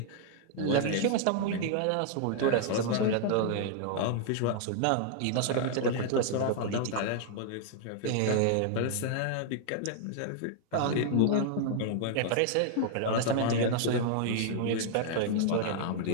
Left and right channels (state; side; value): different; both; correlation -0.01